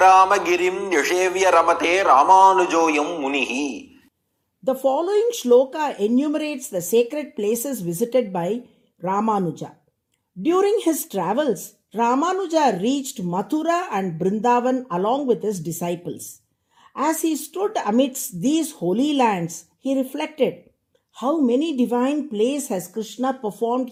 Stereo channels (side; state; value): both; identical; correlation 1.00